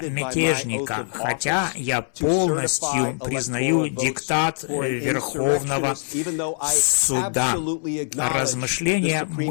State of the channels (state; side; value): silent; right; 63 dB below the other